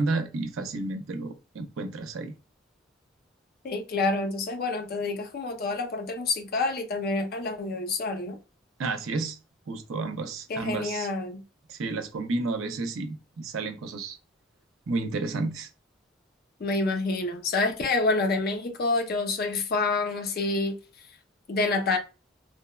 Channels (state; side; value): normal; both; correlation 0.30